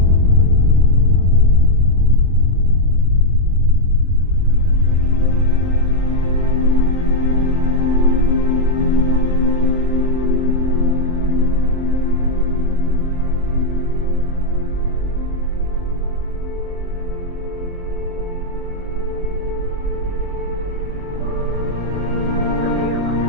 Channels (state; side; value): late; left; 23 ms